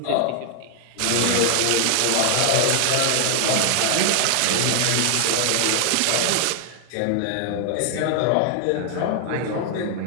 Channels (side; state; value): both; different; correlation 0.00